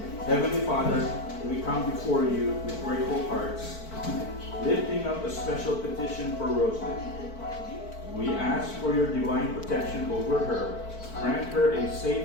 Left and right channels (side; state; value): right; late; 4.5 ms